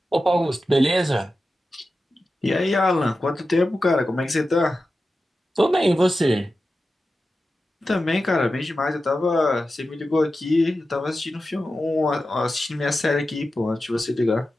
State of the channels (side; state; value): both; normal; correlation 0.92